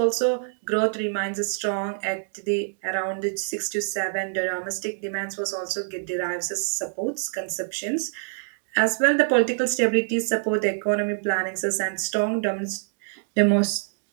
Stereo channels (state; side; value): silent; left; digital silence